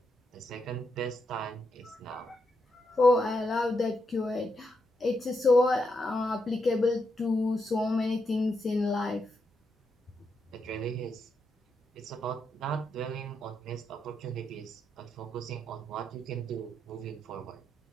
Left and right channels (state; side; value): normal; both; correlation 0.82